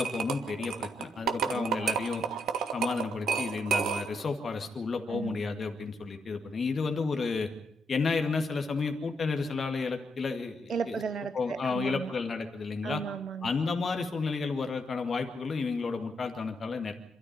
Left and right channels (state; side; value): normal; both; correlation 0.79